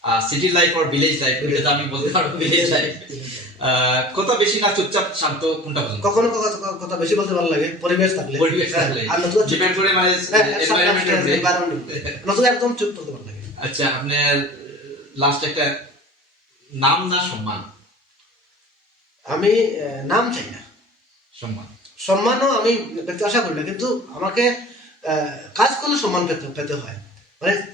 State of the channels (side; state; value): both; normal; correlation 0.41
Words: সিটি লাইফ আর ভিলেজ লাইফ? এটা তো আমি বলতে পারবো ভিলেজ লাইফ। কথা বেশি না চুপচাপ শান্ত, কোনটা পছন্দ? কখনো কথা বেশি বলতে ভালো লাগে, পরিবেশ থাকলে আর নতুন ডিপেন্ড করে, মানে নতুন একদম চুপ করতে ভালো লাগে। আচ্ছা, আপনার লাস্ট একটা নাম না সম্মান? আমি নাম চাই না, সম্মানও আমি পেতে আশা করি না, কিন্তু আমাকে কাজ করলে সম্মান পেতে হয়, মানে